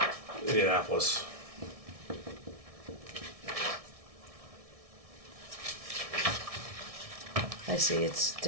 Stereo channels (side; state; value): left; late; 1.6 ms